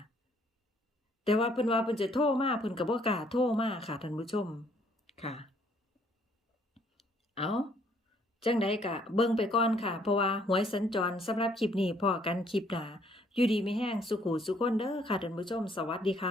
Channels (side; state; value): both; normal; correlation 0.65